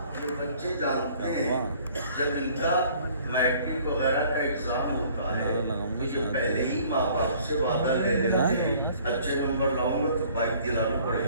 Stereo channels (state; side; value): inverted; both; correlation -0.56